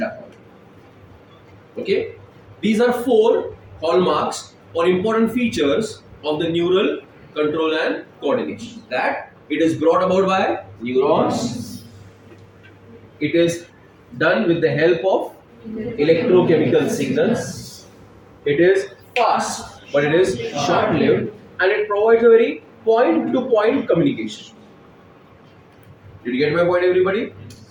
Okay, these are 4 hallmarks or important features of the neural control and coordination. That it is brought about by neurons. It is done with the help of electrochemical signals. It is fast, but it is short-lived, and it provides a very point-to-point communication. Did you get my point, everybody?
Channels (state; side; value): identical; both; correlation 1.00